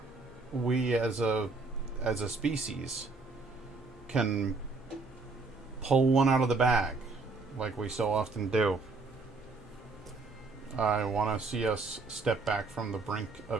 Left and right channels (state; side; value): quieter; left; 3.8 dB